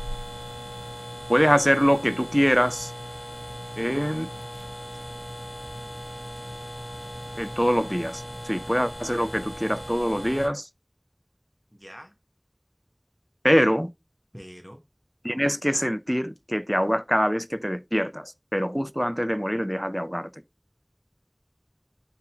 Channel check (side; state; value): both; identical; correlation 1.00